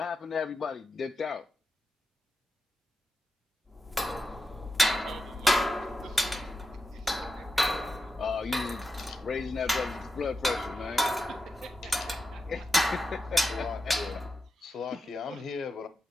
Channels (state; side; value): normal; both; correlation 0.89